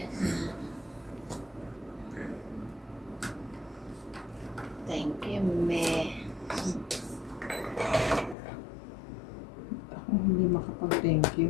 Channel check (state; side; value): drops out; right; at 8.3 s